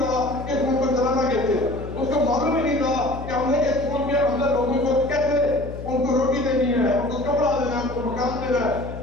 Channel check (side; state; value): left; noise; hum, 10 dB below the sound